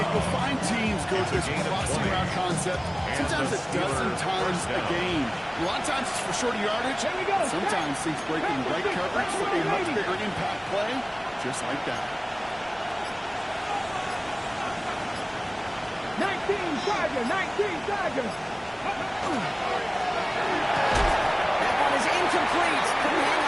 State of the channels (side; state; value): both; identical; correlation 1.00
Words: you'll find teams go to this crossing route concept sometimes a dozen times a game. A lot of times it's for shorter yardage. Sometimes things break in the right coverage for a much bigger impact play, just like that. 19 Tiger. That one is incomplete. Couldn't hang